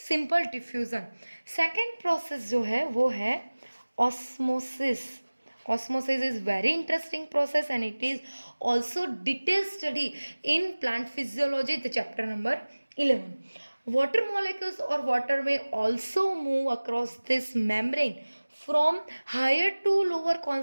diffusion. Second process जो है वो है osmosis. Osmosis is very interesting process and it is also detailed study in plant physiology, the chapter number 11. Water molecules or water may also move across this membrane from higher to lower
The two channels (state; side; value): inverted; both; correlation -1.00